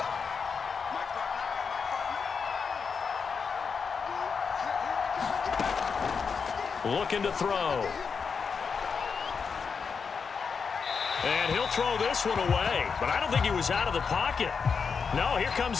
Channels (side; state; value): right; quieter; 5.7 dB